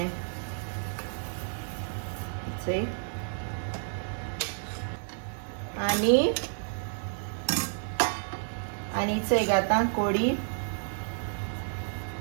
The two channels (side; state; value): left; silent; digital silence